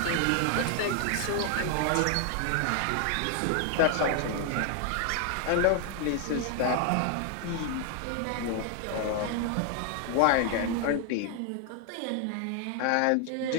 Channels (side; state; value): both; different; correlation 0.00